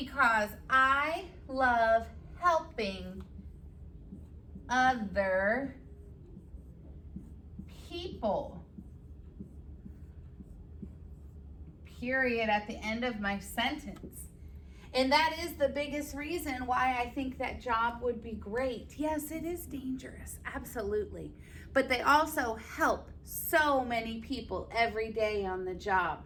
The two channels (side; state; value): both; identical; correlation 1.00